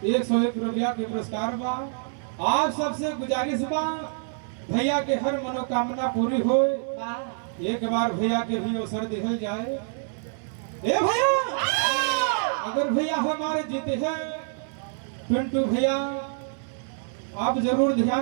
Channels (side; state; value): left; silent; 61 dB below the other